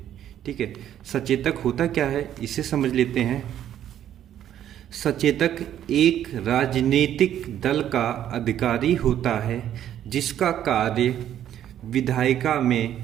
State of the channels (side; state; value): left; quieter; 10.9 dB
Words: ठीक है, सचेतक होता क्या है इसे समझ लेते हैं। सचेतक एक राजनीतिक दल का अधिकारी होता है जिसका कार्य विधायिका